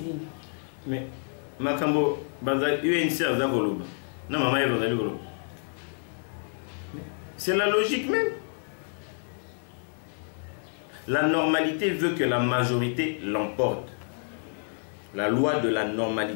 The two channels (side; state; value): right; silent; 59 dB below the other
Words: nini mais makambo bazali UNC aza koloba na mama ye bazali koloba c'est la logique même. La normalité veut que la majorité l'emporte. La loi de la